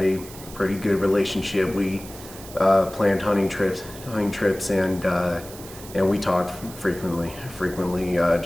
a pretty good relationship. We planned hunting trips, and we talked frequently.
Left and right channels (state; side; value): noise; right; hiss, 16 dB below the sound